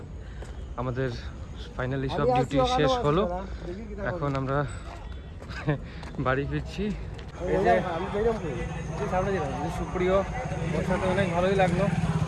আমাদের ফাইনালি সব ডিউটি শেষ হলো। এখন আমরা বাড়ি ফিরছি। সুপ্রিয়, ওর সাথে অনেক ভালোই লাগলো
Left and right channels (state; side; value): identical; both; correlation 1.00